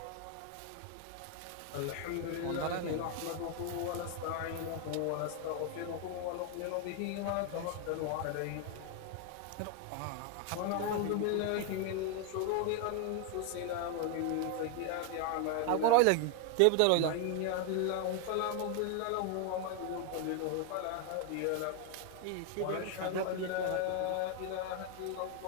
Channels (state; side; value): different; both; correlation 0.01